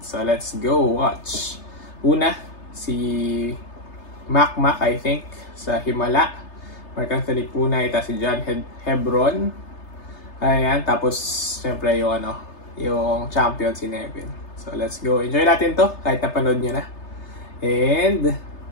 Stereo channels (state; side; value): late; right; 3.3 ms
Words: So let's go watch. Una, si Mac I think, sa Himala. Mark Anthony Punay, tapos si John Hebron. Ayan, tapos syempre yung yung champion si Nevin. So let's go. Enjoy natin to kahit napanood nyo na. And